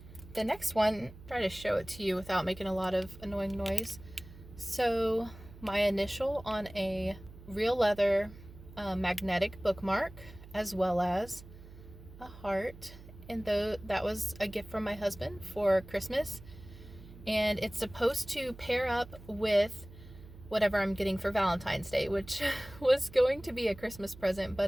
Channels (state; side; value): noise; right; hum, 18 dB below the sound